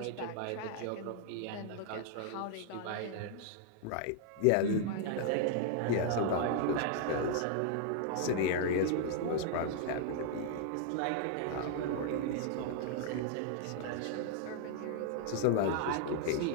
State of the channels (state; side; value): different; both; correlation 0.00